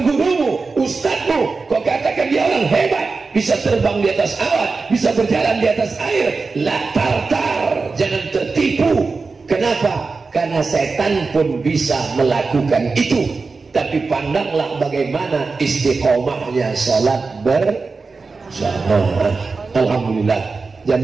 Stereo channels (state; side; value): quieter; left; 4.2 dB